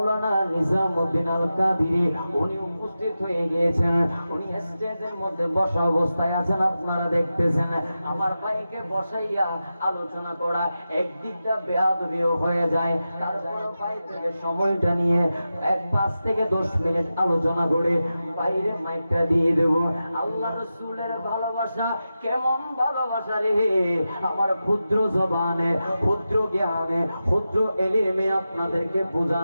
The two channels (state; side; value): inverted; both; correlation -0.92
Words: নিজামউদ্দিন আল কাদিরি, উনি উপস্থিত হয়ে গিয়েছেন। উনি স্টেজের মধ্যে বসা অবস্থায় আছেন, আপনারা দেখতেছেন। আমার ভাইকে বসাইয়া আলোচনা করা একদিকটা বেয়াদবিও হয়ে যায়, তারপর ভাই থেকে সময়টা নিয়ে 5 থেকে 10 মিনিট আলোচনা করে বাইরে মাইকটা দিয়ে দেব। আল্লাহ রসুলের ভালোবাসা কেমন ভালোবাসা রে, আমার ক্ষুদ্র জবানে, ক্ষুদ্র জ্ঞানে, ক্ষুদ্র এলিমে আপনাদেরকে